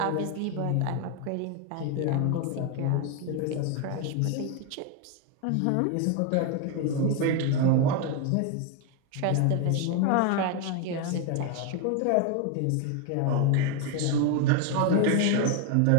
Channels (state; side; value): different; both; correlation 0.01